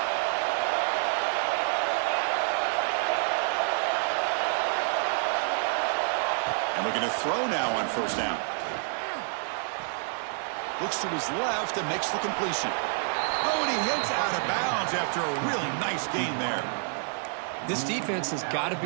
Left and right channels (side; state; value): left; silent; 59 dB below the other